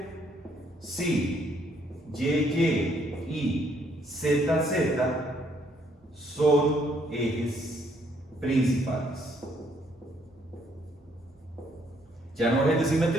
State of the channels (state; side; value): normal; both; correlation 0.68